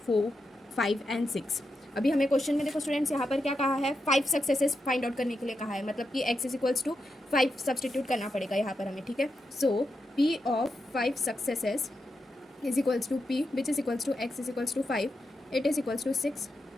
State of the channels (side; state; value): both; normal; correlation 0.87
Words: 4 5 and 6। अभी हमें क्वेश्चन में देखो स्टूडेंट्स यहाँ पर क्या कहा है, 5 सक्सेसेस फाइंड आउट करने के लिए कहा है, मतलब कि x is equals to 5 substitute करना पड़ेगा यहाँ पर हमें, ठीक है। So p of 5 successes is equals to p which is equals to x is equals to 5, it is equals to 6